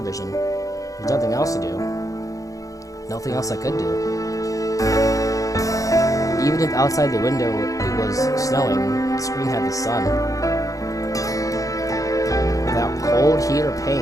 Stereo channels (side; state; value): right; late; 0.16 ms